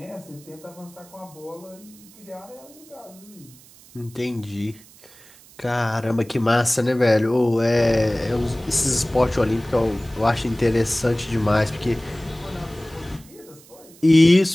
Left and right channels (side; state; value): right; noise; hiss, 24 dB below the sound